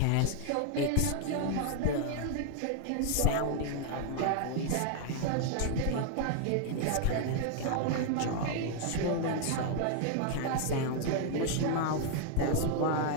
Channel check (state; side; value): different; both; correlation 0.00